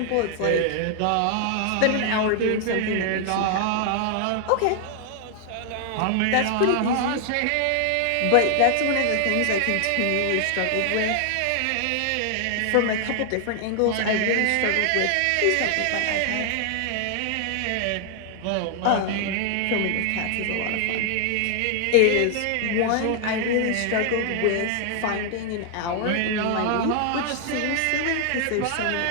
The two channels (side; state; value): both; different; correlation 0.00